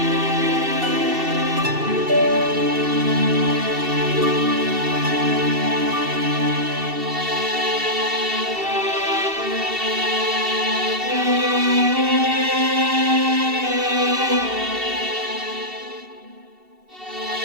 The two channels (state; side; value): late; left; 2.7 ms